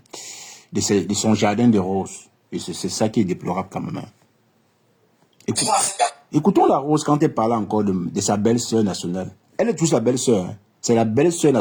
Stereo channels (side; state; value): both; identical; correlation 1.00